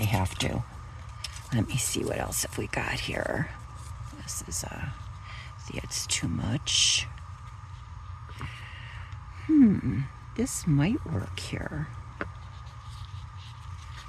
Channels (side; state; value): both; identical; correlation 1.00